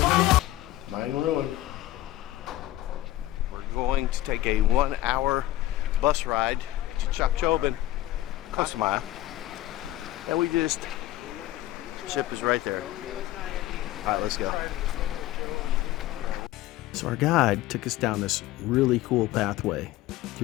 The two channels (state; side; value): quieter; right; 15.4 dB